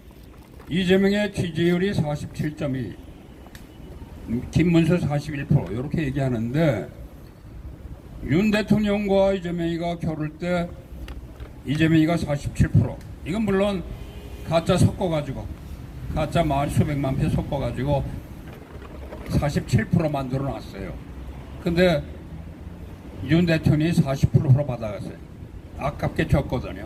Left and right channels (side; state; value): both; identical; correlation 1.00